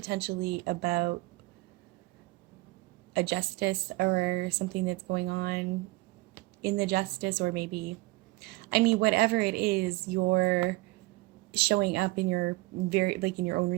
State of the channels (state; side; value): quieter; left; 21.3 dB